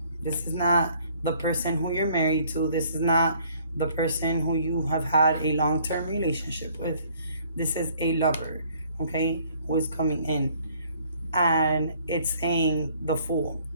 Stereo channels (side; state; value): both; inverted; correlation -0.60